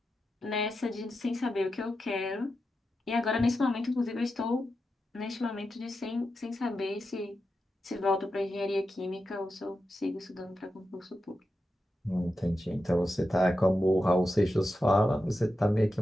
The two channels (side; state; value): both; normal; correlation 0.90